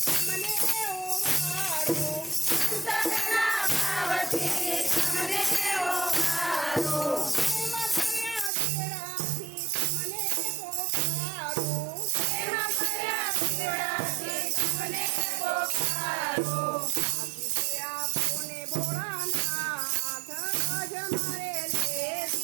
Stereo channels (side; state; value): left; drops out; at 8.5 s